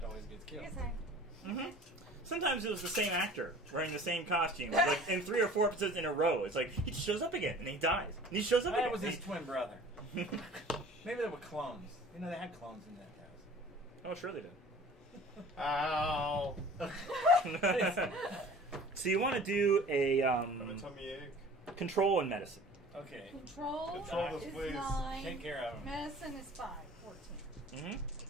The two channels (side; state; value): both; normal; correlation 0.46